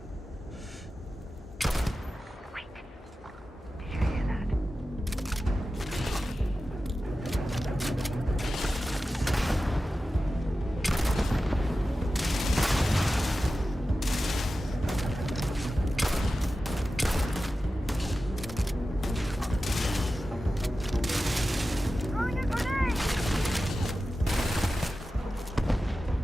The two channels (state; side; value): normal; both; correlation 0.94